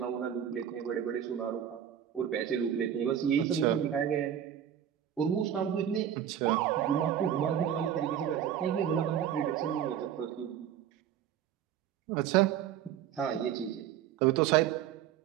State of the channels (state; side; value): quieter; left; 9.8 dB